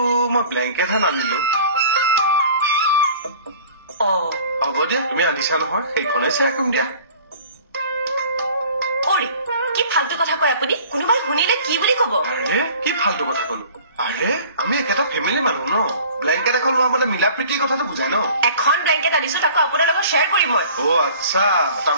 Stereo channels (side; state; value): both; inverted; correlation -0.47